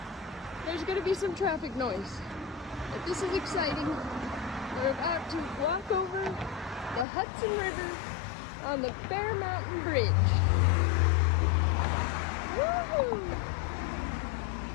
there's going to be some traffic noise, but this is exciting. We're about to walk over the Hudson River on the Fair Mountain Bridge.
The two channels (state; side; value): drops out; right; at 7.1 s